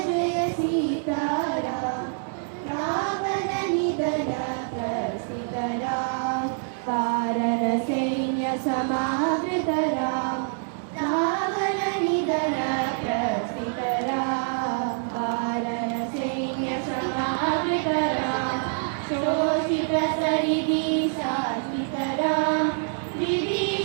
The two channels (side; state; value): left; silent; digital silence